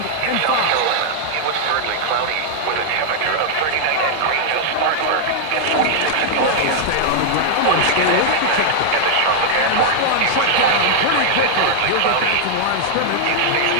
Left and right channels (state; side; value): different; both; correlation -0.01